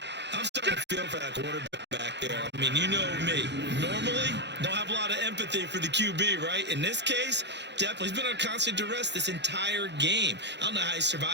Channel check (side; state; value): left; late; 0.51 ms